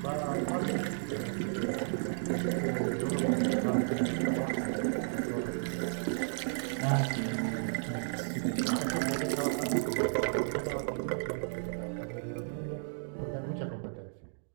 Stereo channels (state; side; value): silent; left; digital silence